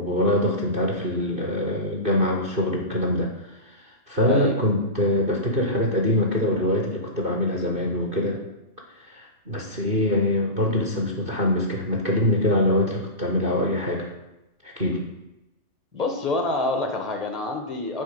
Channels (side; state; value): left; late; 2.6 ms